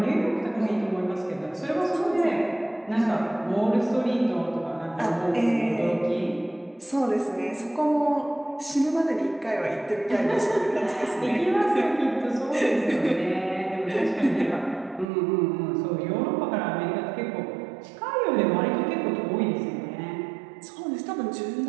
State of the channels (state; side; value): drops out; left; at 15.1 s